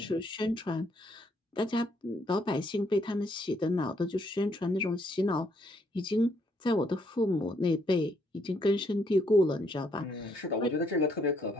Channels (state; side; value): normal; both; correlation 0.71